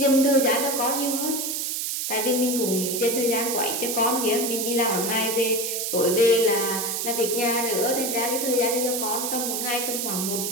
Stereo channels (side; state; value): right; noise; hiss, 2 dB below the sound